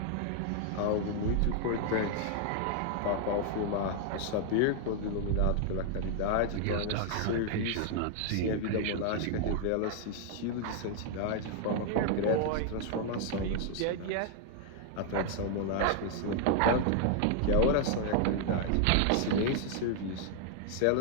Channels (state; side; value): different; both; correlation 0.00